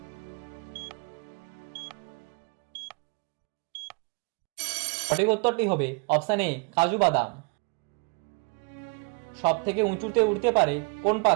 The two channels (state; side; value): quieter; left; 32.6 dB